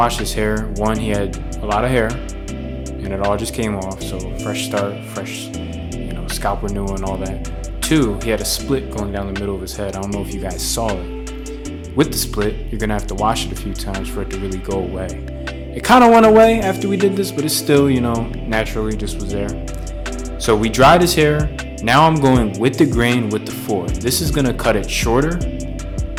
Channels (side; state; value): both; identical; correlation 1.00